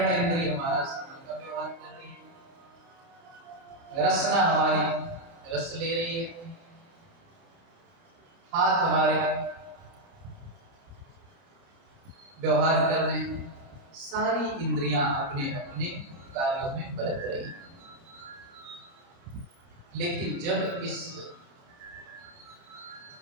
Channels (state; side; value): late; left; 30 ms